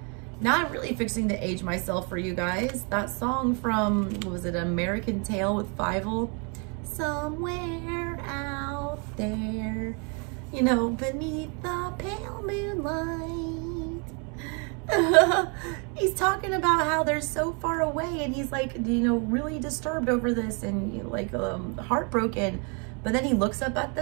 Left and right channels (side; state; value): left; quieter; 34.6 dB